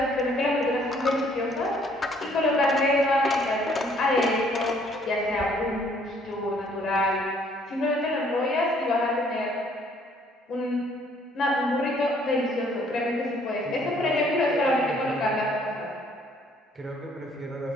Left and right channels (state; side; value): normal; both; correlation 0.62